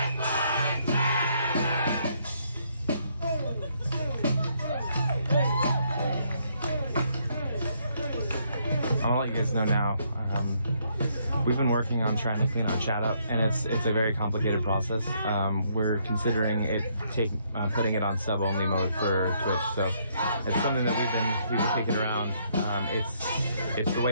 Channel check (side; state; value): both; inverted; correlation -0.71